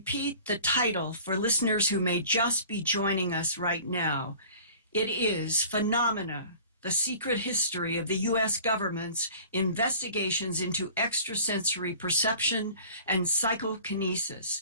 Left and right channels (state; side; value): inverted; both; correlation -0.46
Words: the title for listeners who may just be joining us right now. It is Phenomena, the Secret History of the U.S. Government's Investigations into Extrasensory Perception and